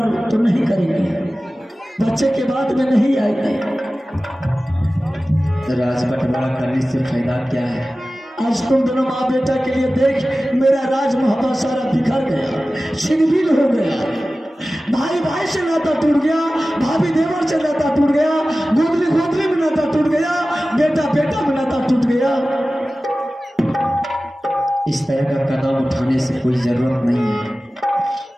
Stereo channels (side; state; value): both; normal; correlation 0.96